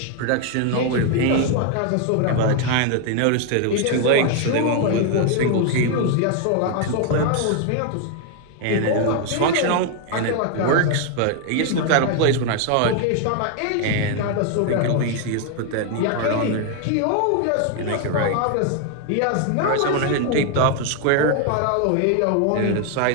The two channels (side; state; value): both; different; correlation 0.01